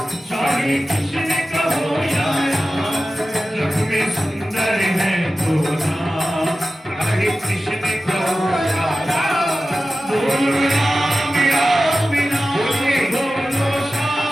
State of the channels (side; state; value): both; normal; correlation 0.94